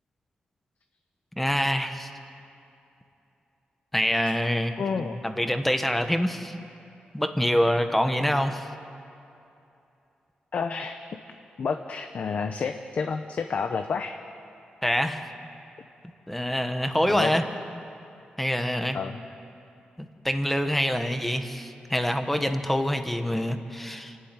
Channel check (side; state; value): both; normal; correlation 0.95